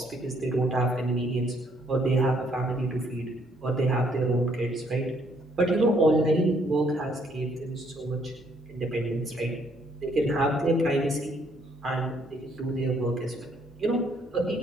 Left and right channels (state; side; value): normal; both; correlation 0.68